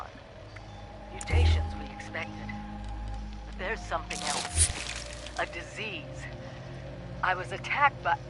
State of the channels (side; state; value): both; identical; correlation 1.00